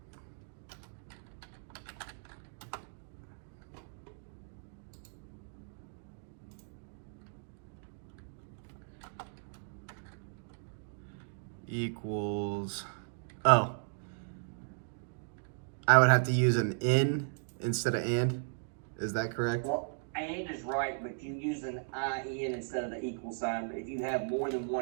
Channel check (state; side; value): silent; left; digital silence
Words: Equals. Oh. I would have to use an in instead of and. Is that correct? Well, and is right, but you use an IN instead of the equal sign. But if you have more than